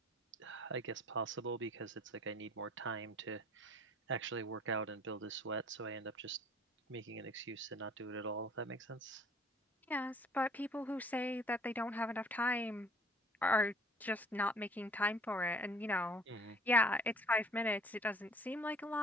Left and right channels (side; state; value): both; normal; correlation 0.54